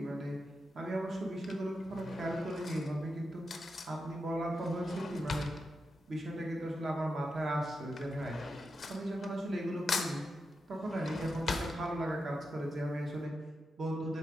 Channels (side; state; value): both; normal; correlation 0.87